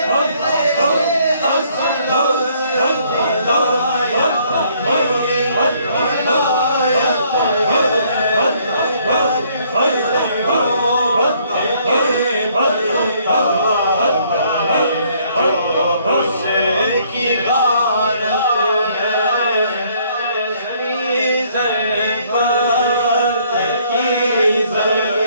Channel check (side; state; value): both; inverted; correlation -0.65